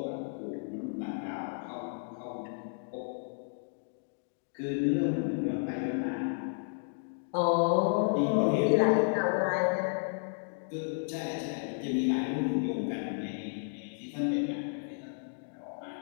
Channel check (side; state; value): right; silent; digital silence